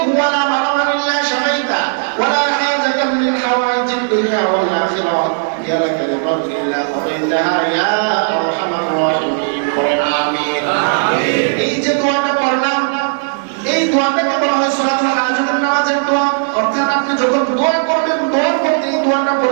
ولا مرضا الا شفيته ولا حاجة من حوائج الدنيا والاخره يا لك الرب الا قضيتها يا ارحم الراحمين. آمين. এই যে দোয়াটা পড়লাম, এই দোয়াটাকে বলা হয় সালাতুল হাজতের নামাজের দোয়া। অর্থাৎ আপনি যখন দোয়া করবেন, দোয়ার মধ্যে এই দোয়াটা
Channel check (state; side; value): silent; left; digital silence